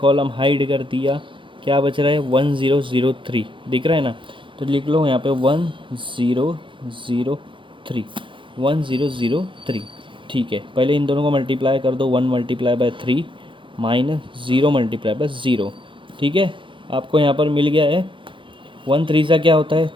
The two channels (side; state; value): left; late; 0.24 ms